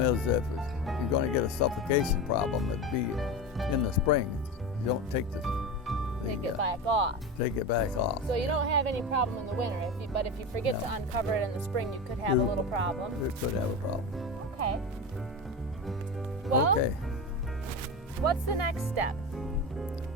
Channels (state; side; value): normal; both; correlation 0.23